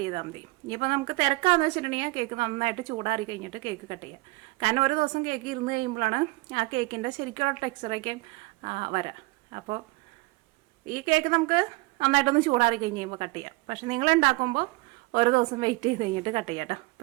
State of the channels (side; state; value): left; quieter; 23.4 dB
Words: ചെയ്താൽ മതി. ഇനിയിപ്പോൾ നമുക്ക് തിരക്കാന്ന് വെച്ചിട്ടുണ്ടെങ്കിൽ കേക്ക് നന്നായിട്ട് ചൂടാറി കഴിഞ്ഞിട്ട് കേക്ക് കട്ട് ചെയ്യാം. കാരണം ഒരു ദിവസം കേക്ക് ഇരുന്ന് കഴിയുമ്പോഴാണ് ആ കേക്കിൻ്റെ ശരിക്കുള്ള ടെക്സ്ചറൊക്കെ വരാം. അപ്പോൾ ഈ കേക്ക് നമുക്ക് നന്നായിട്ടൊന്ന് ചൂടാറി കഴിഞ്ഞ് കഴിയുമ്പോൾ കട്ട് ചെയ്യാം. പക്ഷെ നിങ്ങൾ ഉണ്ടാക്കുമ്പോൾ ഒരു ദിവസം വെയിറ്റ് ചെയ്ത് കഴിഞ്ഞിട്ട് കട്ട് ചെയ്യാം കേട്ടോ.